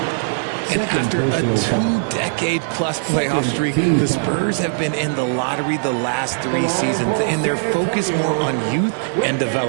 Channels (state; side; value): silent; left; digital silence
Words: And after a 2-decade-plus playoff streak, the Spurs have been in the lottery the last 3 seasons, and they're focused more on youth and